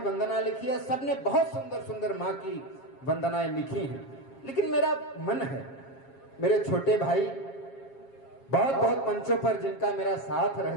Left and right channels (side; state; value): right; late; 7.4 ms